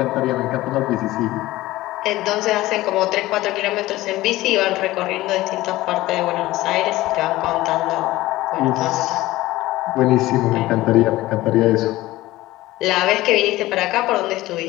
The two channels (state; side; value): quieter; right; 17.4 dB